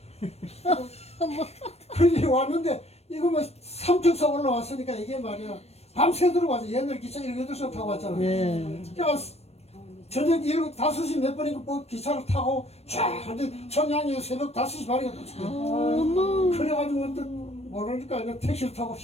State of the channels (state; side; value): late; right; 0.31 ms